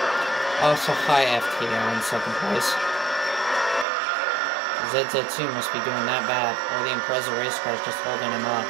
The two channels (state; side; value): drops out; left; at 3.9 s